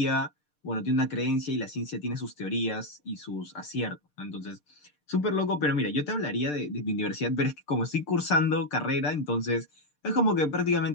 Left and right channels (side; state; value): right; late; 6.7 ms